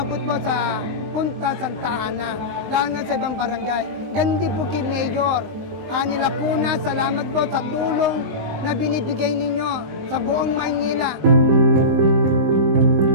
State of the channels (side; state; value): left; late; 19 ms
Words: po sa Punta Santa Ana, lalo na sa ibang barangay. Gandi po kay Mayor. Nila po na salamat po sa tulong na binibigay ninyo sa buong Maynila.